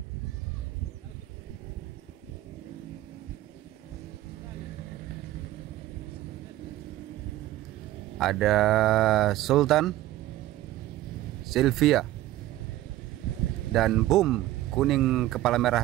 Ada Sultan, Sylvia, dan Boom kuning kepala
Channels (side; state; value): left; quieter; 15.0 dB